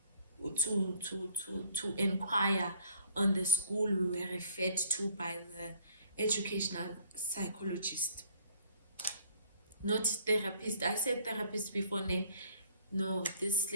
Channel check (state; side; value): inverted; both; correlation -0.57